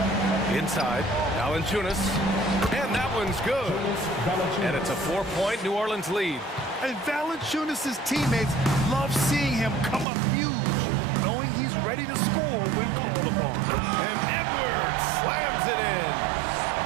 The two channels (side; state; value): left; drops out; at 10.1 s